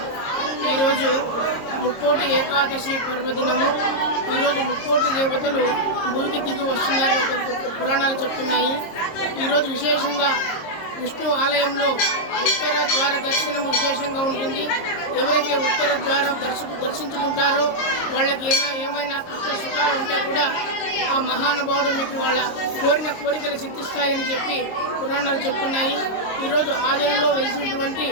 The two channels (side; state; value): right; late; 26 ms